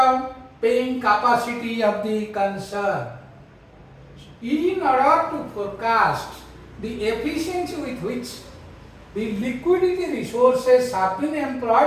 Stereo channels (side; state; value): both; identical; correlation 1.00